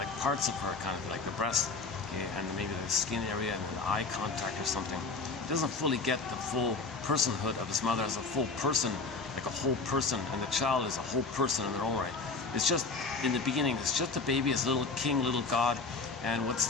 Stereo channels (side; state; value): right; quieter; 4.1 dB